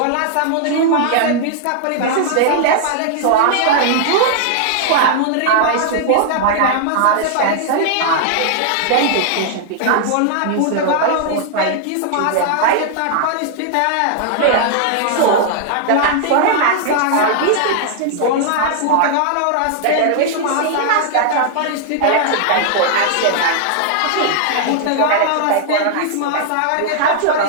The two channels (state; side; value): different; both; correlation -0.01